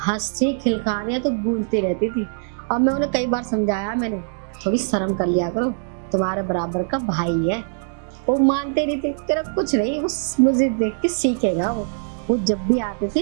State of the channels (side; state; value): left; silent; digital silence